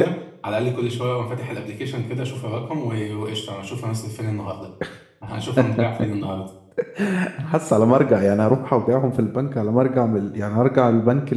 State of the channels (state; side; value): identical; both; correlation 1.00